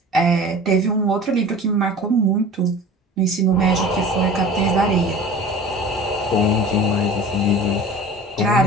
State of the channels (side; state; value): both; normal; correlation 0.40